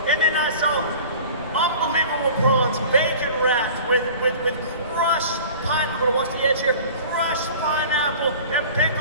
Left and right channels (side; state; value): both; inverted; correlation -0.42